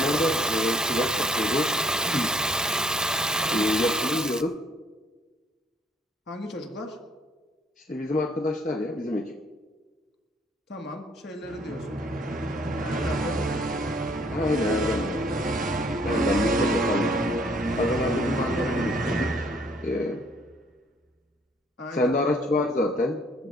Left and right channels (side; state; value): both; normal; correlation 0.63